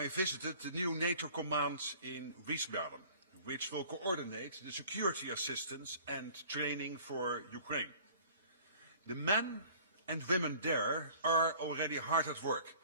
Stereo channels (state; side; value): inverted; both; correlation -0.50